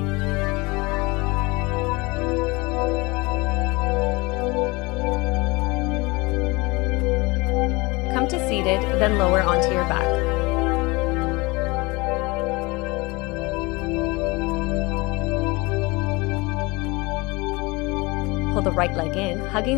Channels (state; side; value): quieter; right; 24.6 dB